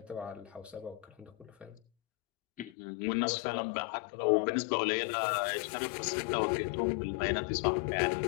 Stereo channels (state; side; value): drops out; right; at 2.7 s